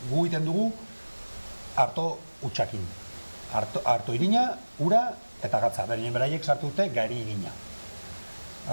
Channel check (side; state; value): both; inverted; correlation -1.00